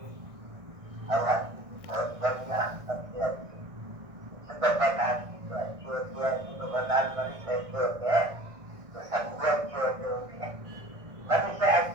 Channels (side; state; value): left; late; 1.6 ms